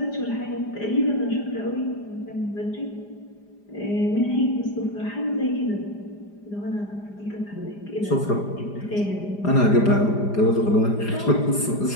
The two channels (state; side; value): late; right; 4.9 ms